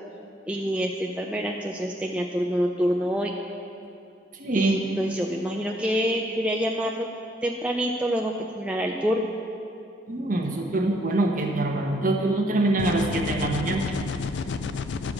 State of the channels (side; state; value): both; normal; correlation 0.68